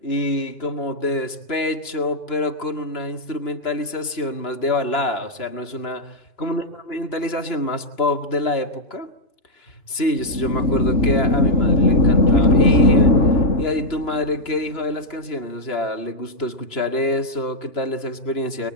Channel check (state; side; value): late; right; 2.9 ms